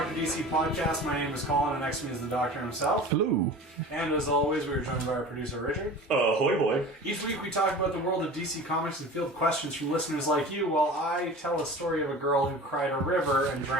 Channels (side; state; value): both; normal; correlation 0.38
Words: DC podcast. My name is Colin, and next to me is the doctor himself. Hello. And as always, we are joined by our producer, Richard. Ahoy, boy. Each week we talk about the world of DC Comics and field questions from listeners like you, while I tell a story of a girl who cried a river and